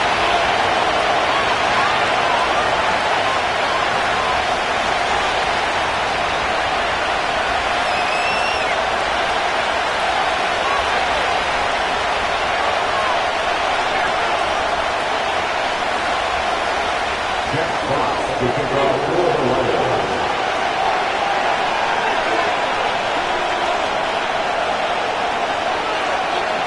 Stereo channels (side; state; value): both; identical; correlation 1.00